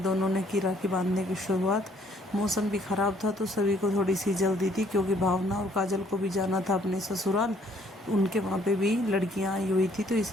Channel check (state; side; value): normal; both; correlation 0.64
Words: ने की राखी बांधने की शुरुआत। मौसम भी ख़राब था तो सभी को थोड़ी सी जल्दी थी, क्योंकि भावना और काजल को भी जाना था अपने ससुराल। उनके वहाँ पे भी लड़कियाँ आई हुई थी, तो